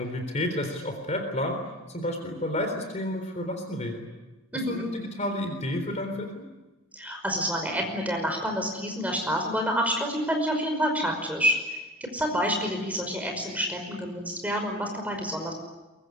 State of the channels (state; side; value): normal; both; correlation 0.37